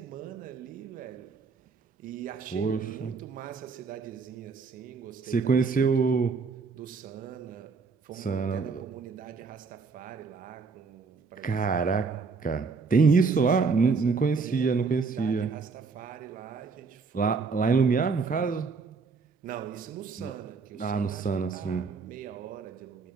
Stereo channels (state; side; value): quieter; left; 4.8 dB